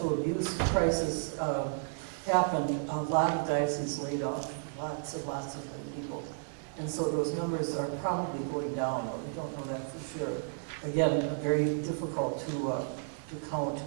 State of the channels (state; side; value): silent; left; digital silence